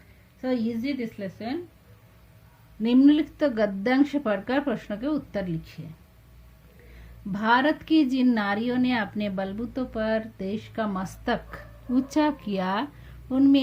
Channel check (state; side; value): identical; both; correlation 1.00